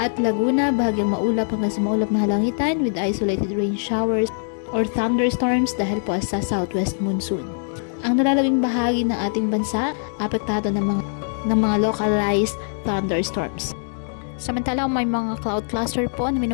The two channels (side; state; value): right; silent; digital silence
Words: Laguna, bahagyang maulap hanggang sa maulap na halangitan with isolated rain showers or thunderstorms dahil po sa southwest monsoon. Ang nalalabing bahagi ng ating bansa, apektado ng mga localized thunderstorms. Samantalang may mga cloud cluster po na